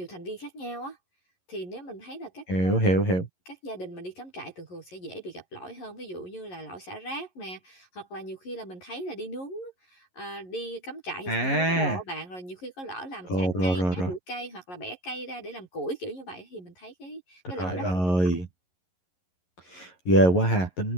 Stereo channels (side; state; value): right; late; 11 ms